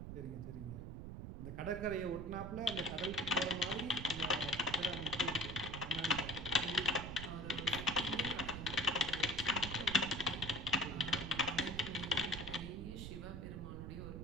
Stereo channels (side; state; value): right; noise; rumble, 7 dB below the sound